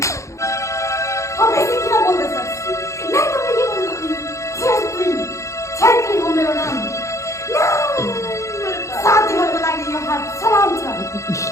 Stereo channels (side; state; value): right; late; 0.14 ms